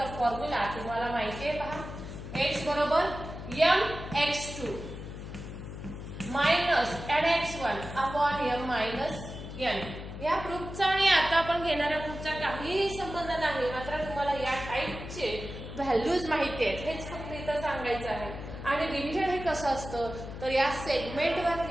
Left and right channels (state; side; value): noise; left; hum, 10 dB below the sound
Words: फॉर्म्युला तुम्हाला माहिती आहे. पहा x बरोबर mx2 minus nx1 upon m minus n. या प्रूफचा आणि आता आपण घेणाऱ्या प्रूफचा काहीही संबंध नाही, मात्र तुम्हाला या टाइपचे व्हॅल्यूज माहिती आहेत हेच फक्त इथं सांगायचं आहे. आणि डिव्हिजन हे कसं असतं, तर या